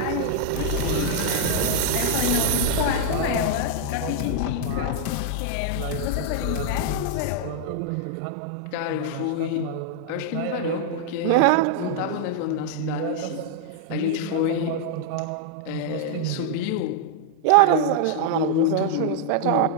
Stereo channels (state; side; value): different; both; correlation -0.01